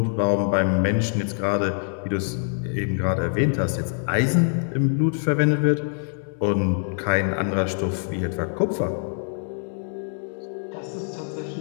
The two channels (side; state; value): right; silent; digital silence